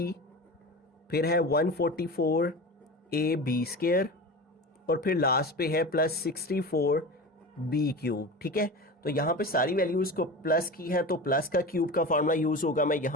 फिर है 144ab स्क्वायर, और फिर लास्ट पे है प्लस 64b क्यूब। ठीक है, तो यहाँ पे सारी वैल्यूज़ को प्लस की है तो प्लस का क्यूब का फार्मूला यूज़ होगा। मैं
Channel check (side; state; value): both; normal; correlation 0.29